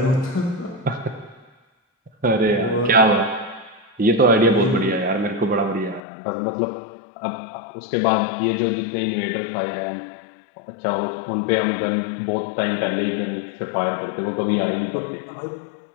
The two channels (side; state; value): right; drops out; at 6.0 s